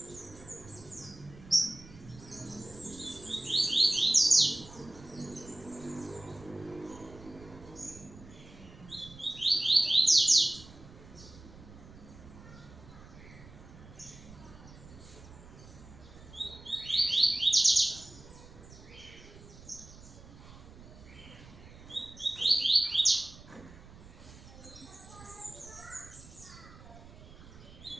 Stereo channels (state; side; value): noise; right; rumble, 18 dB below the sound